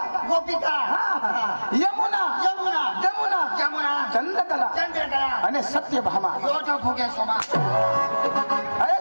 गोपिका. हा. यमुना. यमुना. जमुना. जमुना. चंद्रकला चंद्रकला. आणि सत्यभामा. योटा फुगे सोमा. अरे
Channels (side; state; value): both; inverted; correlation -1.00